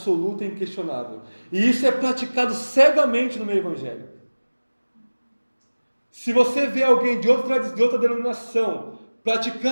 e inquestionável. E isso é praticado cegamente no meio evangélico. Se você vê alguém de outra denominação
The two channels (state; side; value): inverted; both; correlation -1.00